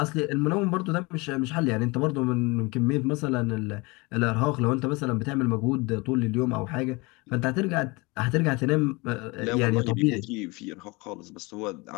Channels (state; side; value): quieter; right; 26.0 dB